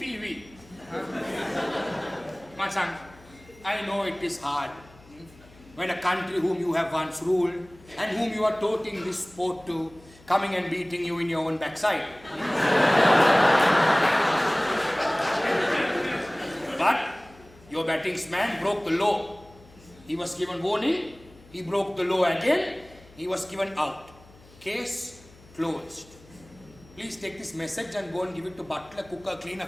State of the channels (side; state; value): left; noise; hum, 25 dB below the sound